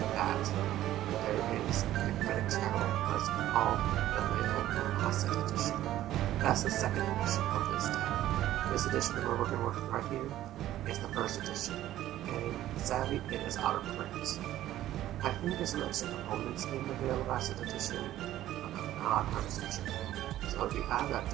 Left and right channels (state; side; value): quieter; left; 13.6 dB